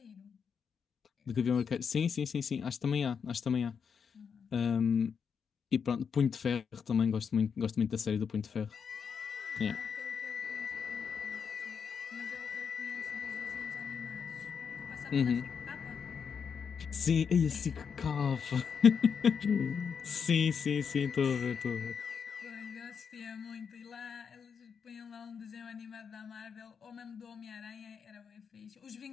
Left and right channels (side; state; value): right; quieter; 6.6 dB